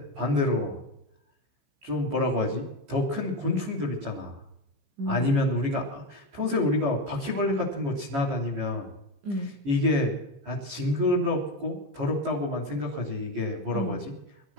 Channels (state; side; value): late; left; 14 ms